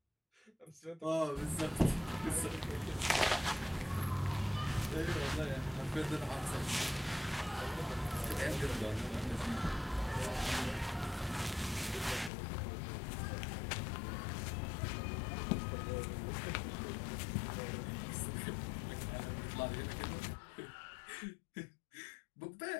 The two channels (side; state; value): right; drops out; at 12.3 s